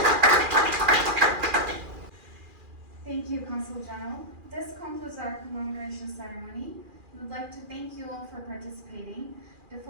Thank you, Consul General. This concludes our commemoration ceremony. We would like to thank you all for participating. The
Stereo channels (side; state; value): left; late; 2.4 ms